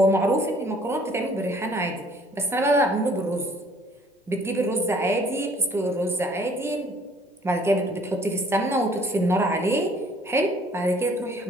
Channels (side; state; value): both; normal; correlation 0.57